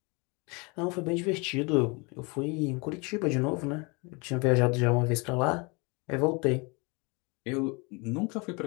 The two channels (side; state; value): right; quieter; 29.4 dB